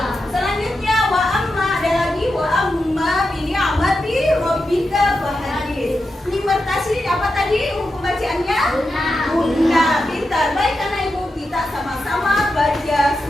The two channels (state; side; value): normal; both; correlation 0.88